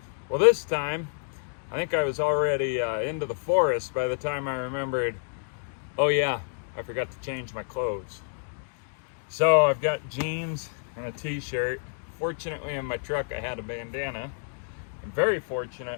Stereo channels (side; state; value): right; silent; digital silence